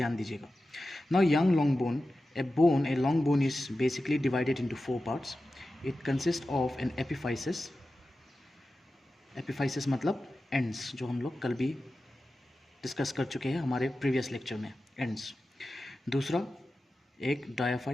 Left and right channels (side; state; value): both; normal; correlation 0.93